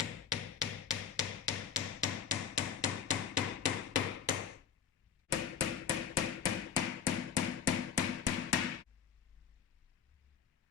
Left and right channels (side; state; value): right; quieter; 8.1 dB